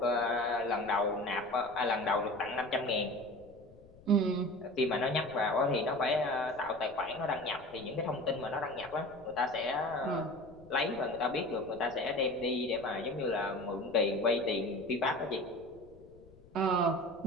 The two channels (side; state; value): left; noise; rumble, 23 dB below the sound